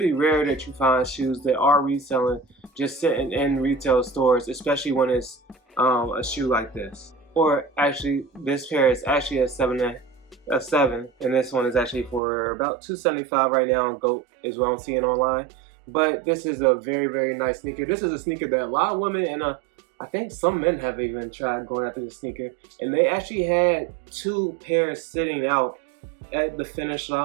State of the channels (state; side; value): drops out; left; at 12.2 s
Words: rare that you find shoes that are reselling just sitting in retail stores, especially when it's a shoe like this. Or actually, this pair is actually a 7, and this one is actually for about $275 right now on GOAT is what I'm seeing online. But this is a very, very nice sneaker. This is a sneaker that a lot of women and I think some men have even tried going after the sneaker, and they actually had 2 pairs sitting out at the finish